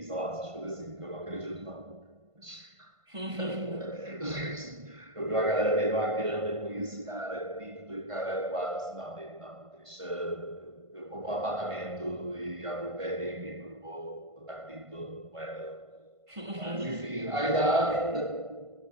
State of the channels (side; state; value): left; late; 1.5 ms